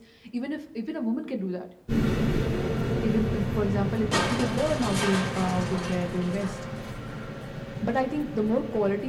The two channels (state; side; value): identical; both; correlation 1.00